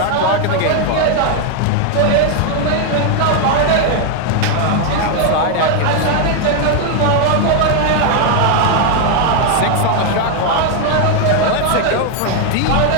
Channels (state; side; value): different; both; correlation 0.01